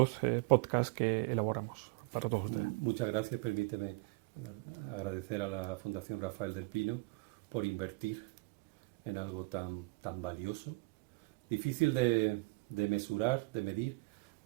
podcasts que elaboramos para todos ustedes. Muchas gracias. Permíteme agradecer a la Fundación Rafael del Pino por invertir en algo tan valioso, difícil de mesurar, de medir,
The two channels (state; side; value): quieter; left; 25.8 dB